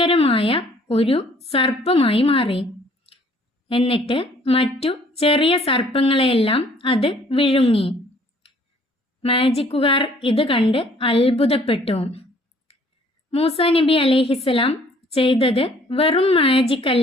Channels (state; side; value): normal; both; correlation 0.59